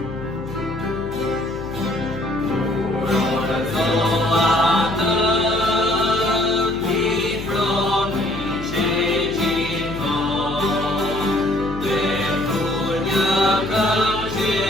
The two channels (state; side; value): noise; left; hum, 11 dB below the sound